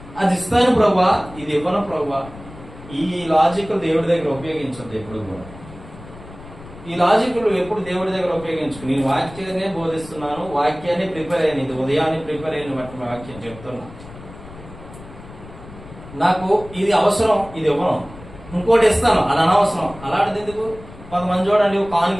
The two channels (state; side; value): noise; left; rumble, 17 dB below the sound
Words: అది ఇస్తాను ప్రభువా, ఇది ఇవ్వను ప్రభువా. ఈ లాజిక్ దేవుడి దగ్గర ఉపయోగించద్దు ఎప్పుడు కూడా. ఈ లాజిక్లు ఎప్పుడు దేవుడి దగ్గర ఉపయోగించుకు. నేను వాక్యాన్ని బోధిస్తున్నాను, వాక్యాన్ని ప్రిపేర్ అయ్యాను, ఇది ఉదయాన్ని ప్రిపేర్ అయిన బట్టి వాక్యం చెప్తున్నా. నాకు ఇది అవసరం, ఇది ఇవ్వను, ఇంకోటి ఇస్తాను, అది అనవసరం. అలాంటిది ఎందుకు? కొంతమంది చూడండి,